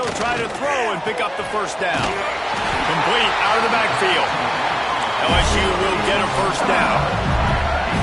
try to throw and pick up the first down. Complete out of the backfield. LSU will get a first down.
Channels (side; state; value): both; identical; correlation 1.00